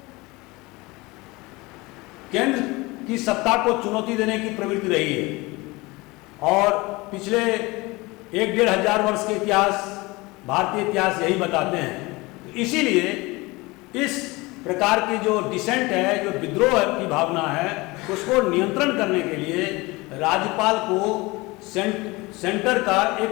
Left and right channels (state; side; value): quieter; right; 23.1 dB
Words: केंद्र की सत्ता को चुनौती देने की प्रवृत्ति रही है, और पिछले 1-1.5 हजार वर्ष के इतिहास, भारतीय इतिहास यही बताते हैं। तो इसीलिए इस प्रकार की जो डिसेंट है, जो विद्रोह की भावना है, उसको नियंत्रण करने के लिए राज्यपाल को सेंटर का